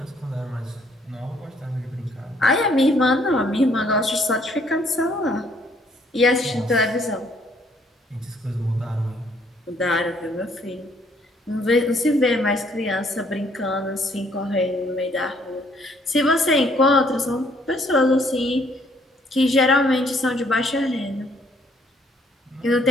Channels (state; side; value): normal; both; correlation 0.65